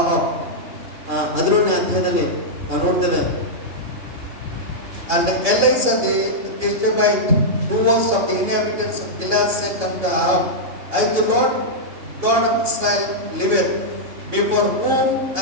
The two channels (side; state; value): left; late; 2.8 ms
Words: 11ನೇ ಅಧ್ಯಾಯದಲ್ಲಿ ನಾವು ನೋಡ್ತೇವೆ, and Elisha the Tishbite, who was of the inhabitants of Gilead, said unto Ahab, I the Lord God of Israel liveth, before whom